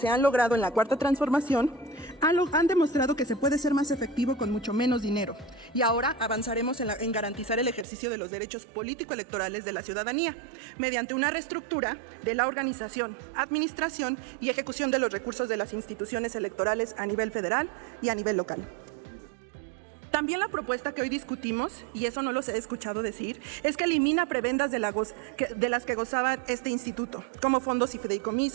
han logrado en la cuarta transformación han demostrado que se puede ser más efectivo con mucho menos dinero. Y ahora avanzaremos en garantizar el ejercicio de los derechos político-electorales de la ciudadanía, mediante una reestructura de la organización, administración y ejecución de los recursos de las instituciones electorales a nivel federal y a nivel local. También la propuesta que hoy discutimos, y eso no los he escuchado decir, es que elimina prebendas de las que gozaba este instituto, como fondos y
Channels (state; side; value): drops out; left; at 7.9 s